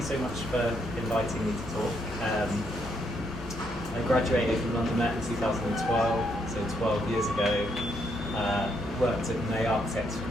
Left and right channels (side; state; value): both; normal; correlation 0.75